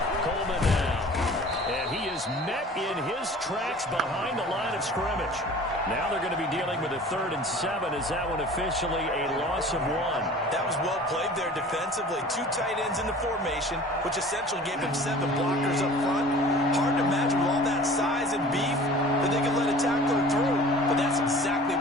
Coleman now. And he is met in his tracks behind the line of scrimmage. Now they're going to be dealing with a 3rd and 7. Is that one officially a loss of 1? That was well played there defensively. 2 tight ends in the formation, which essentially gave him 7 blockers up front. Hard to imagine with all that size and beef that they could let a tackler through. But that's exactly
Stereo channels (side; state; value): both; normal; correlation 0.44